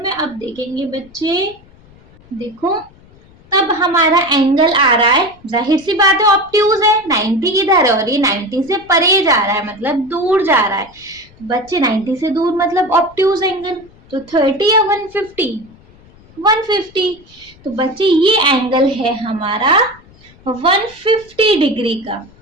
अब देखेंगे बच्चे, देखो तब हमारा एंगल आ रहा है, जाहिर सी बात है ऑब्ट्यूज है, 90 इधर है और ये 90 से परे जा रहा है, मतलब दूर जा रहा है। बच्चे 90 से दूर मतलब ऑब्ट्यूज एंगल, तो 30 या 150, 150। तो बच्चे ये एंगल है हमारा 150 डिग्री का,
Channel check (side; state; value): left; noise; rumble, 26 dB below the sound